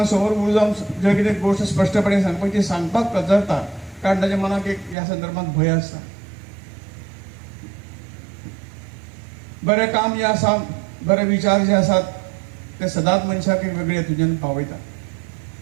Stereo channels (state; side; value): drops out; left; at 5.0 s